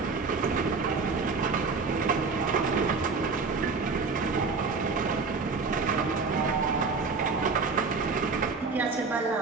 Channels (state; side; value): quieter; left; 4.5 dB